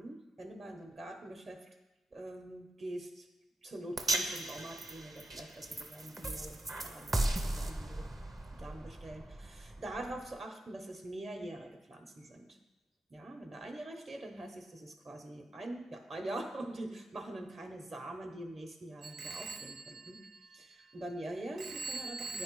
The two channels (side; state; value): both; normal; correlation 0.87